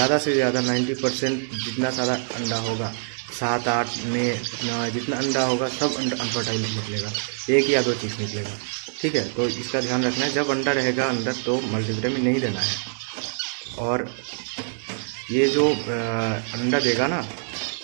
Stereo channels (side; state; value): left; silent; digital silence